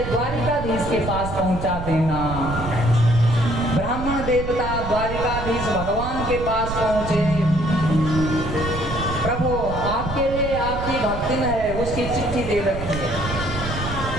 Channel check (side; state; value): right; noise; rumble, 7 dB below the sound